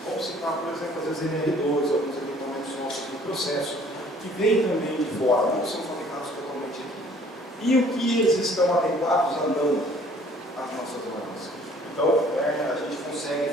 vamos citar, por exemplo, as NR2, alguns equipamentos nossos de processo, que vêm também de fora, não são fabricados totalmente aqui. E o que eles estão adequados a não às nossas normas. Então, a gente consegue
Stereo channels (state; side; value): normal; both; correlation 0.56